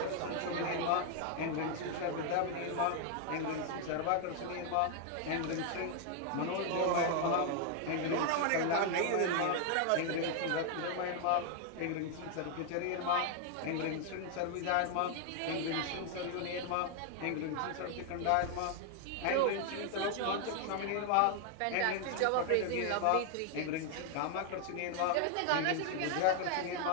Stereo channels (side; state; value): both; different; correlation 0.00